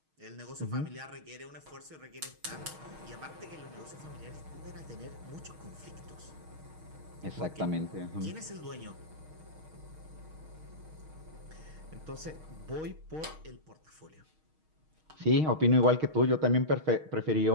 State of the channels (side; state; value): left; late; 6.4 ms